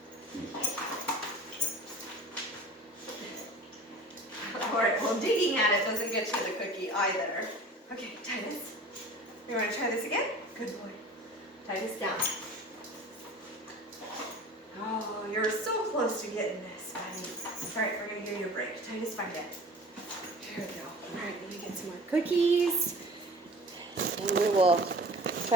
All right, well, digging at it doesn't get you the cookie either. Okay, Titus. You want to try this again? Good boy. Titus, down. Oh, you're so close to getting this, buddy. All right, we're going to give you a break. Titus, find it. Here we go. All right, let me get some more cookies. And we will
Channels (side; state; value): both; normal; correlation 0.41